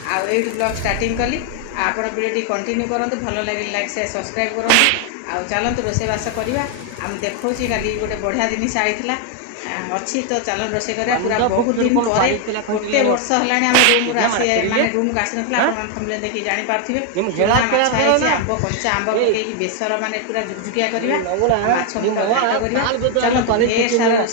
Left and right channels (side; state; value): both; different; correlation 0.01